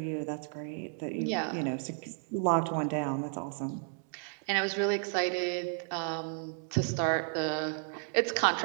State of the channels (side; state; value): left; silent; 56 dB below the other